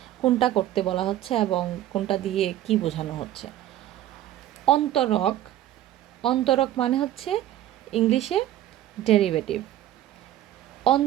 কোনটা করতে বলা হচ্ছে এবং কোনটা দিয়ে কি বোঝানো হচ্ছে। অন্তরক, অন্তরক মানে হচ্ছে ইংলিশে ডেরিভেটিভ।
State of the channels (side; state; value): left; quieter; 12.9 dB